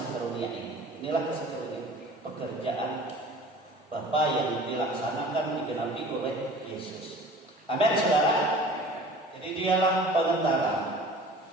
karunia ini. Inilah kasih karunia, pekerjaan Bapa yang dilaksanakan digenapi oleh Yesus. Amin, saudara. Jadi dialah pengantara.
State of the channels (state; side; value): normal; both; correlation 0.44